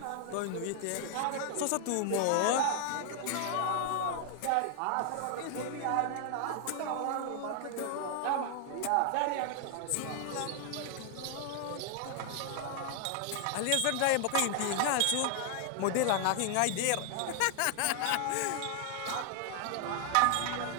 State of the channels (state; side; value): different; both; correlation 0.00